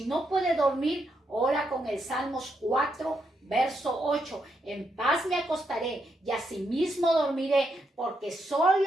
no puede dormir, ora con el Salmos 4, verso 8. En paz me acostaré y asimismo dormiré, porque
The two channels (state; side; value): normal; both; correlation 0.80